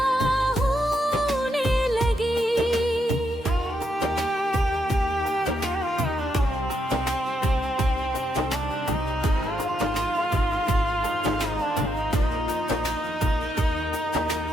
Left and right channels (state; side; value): normal; both; correlation 0.79